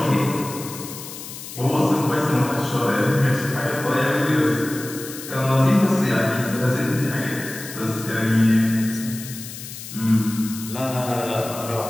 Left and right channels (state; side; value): noise; left; hiss, 12 dB below the sound